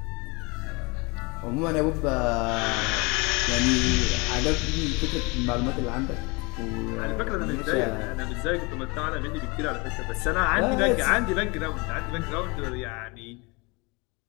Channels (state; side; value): quieter; right; 27.7 dB